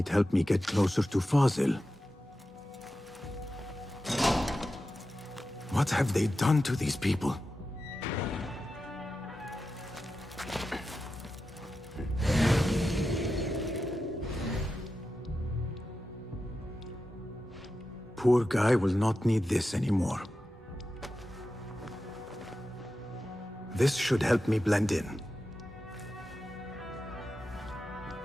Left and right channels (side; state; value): both; normal; correlation 0.91